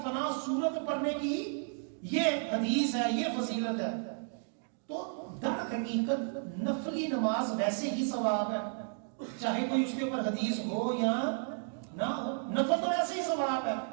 فلاں سورت پڑھنے کی یہ حدیث ہے، یہ فضیلت ہے، تو در حقیقت نفلی نماز ویسے ہی ثواب ہے، چاہے کوئی اس کے اوپر حدیث ہو یا نہ ہو، نفل تو ویسے ہی ثواب ہے۔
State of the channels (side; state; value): left; silent; 56 dB below the other